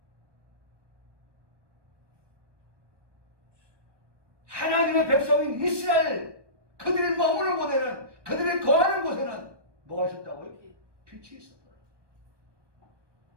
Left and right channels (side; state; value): left; late; 1.2 ms